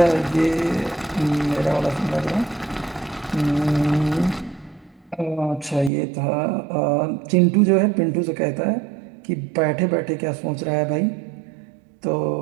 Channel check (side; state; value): left; drops out; at 5.9 s